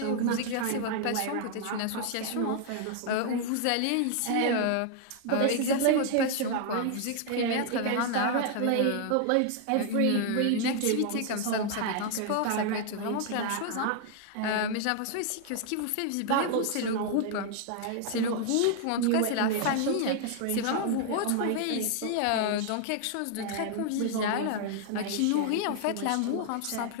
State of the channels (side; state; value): both; different; correlation 0.00